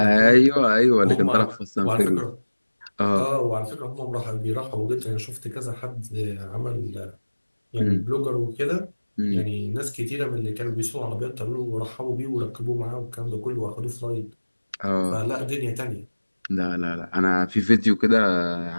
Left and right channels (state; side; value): inverted; both; correlation -1.00